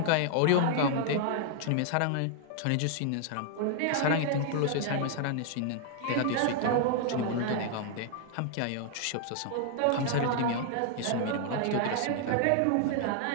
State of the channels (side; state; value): both; different; correlation 0.00